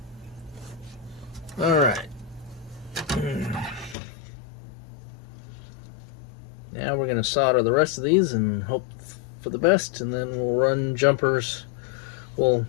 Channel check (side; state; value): right; drops out; at 4.0 s